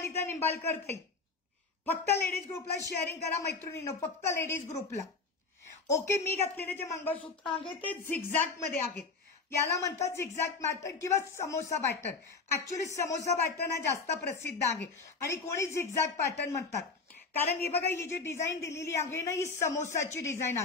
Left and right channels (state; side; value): quieter; right; 4.4 dB